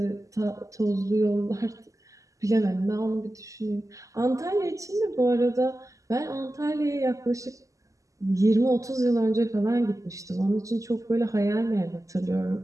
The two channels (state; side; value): late; left; 0.16 ms